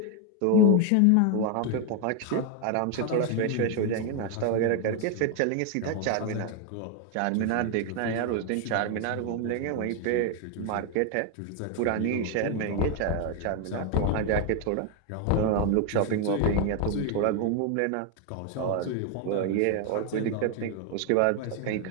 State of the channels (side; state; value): both; different; correlation 0.01